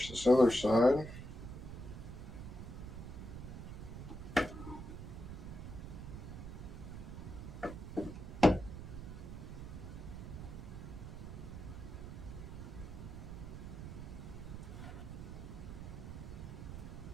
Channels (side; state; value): right; noise; rumble, 8 dB below the sound